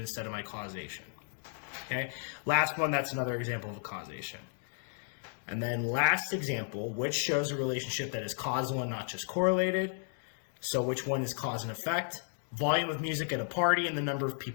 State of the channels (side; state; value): right; silent; 55 dB below the other